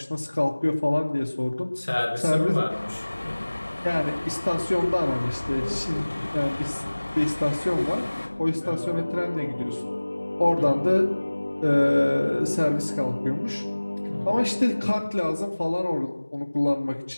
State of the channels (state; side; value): inverted; both; correlation -1.00